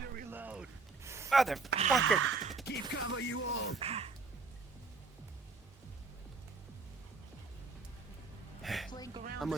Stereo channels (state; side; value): quieter; left; 4.1 dB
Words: to reload. Motherfucker! Keep cover, you all. I'm